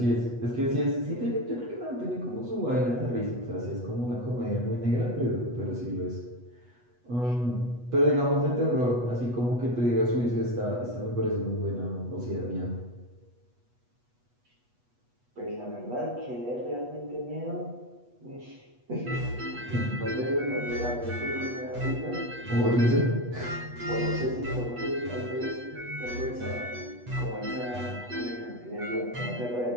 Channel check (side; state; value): left; late; 8.2 ms